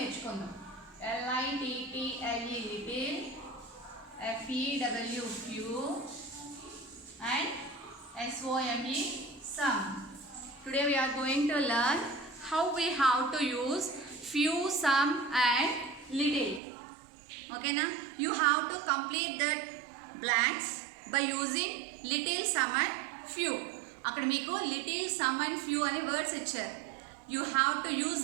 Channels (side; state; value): left; drops out; at 16.6 s